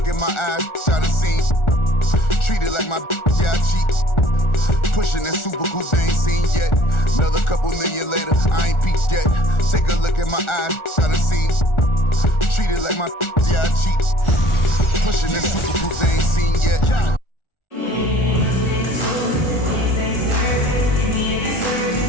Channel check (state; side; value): late; right; 1.4 ms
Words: in my eyes, try to see. Treat it like my yeah, I cheat. Pushing that super coupe they ain't seen yet. Another couple million later, I ain't peaked yet. Take a look in my eyes, try to see. Treat it like my yeah, I cheat. Pushing that super coupe they ain't seen yet.